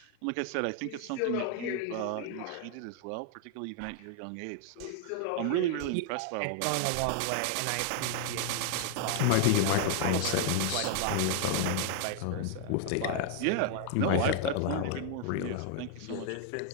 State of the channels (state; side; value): different; both; correlation 0.00